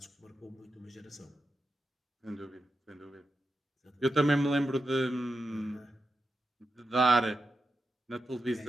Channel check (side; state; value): both; normal; correlation 0.89